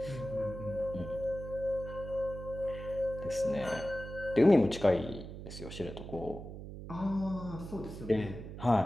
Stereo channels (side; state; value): right; noise; hum, 10 dB below the sound